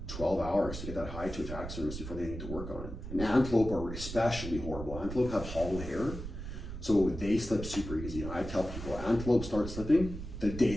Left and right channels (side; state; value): right; noise; rumble, 8 dB below the sound